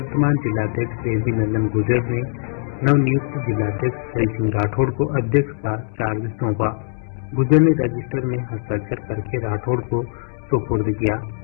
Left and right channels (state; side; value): silent; right; 65 dB below the other